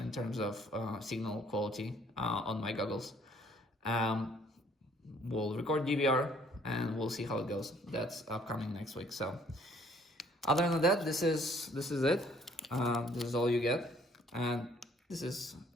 terms of signal quality on my goggles. We'll record DVR and we'll see how it goes. That's upcoming next week. So other than that, this is it. This is all you get, and this is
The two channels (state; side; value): normal; both; correlation 0.61